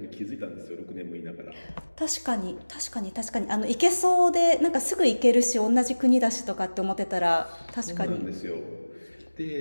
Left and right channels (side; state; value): both; inverted; correlation -1.00